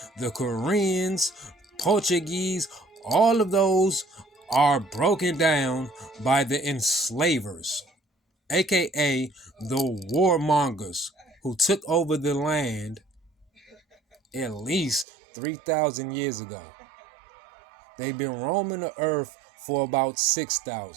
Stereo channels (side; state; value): left; drops out; at 15.1 s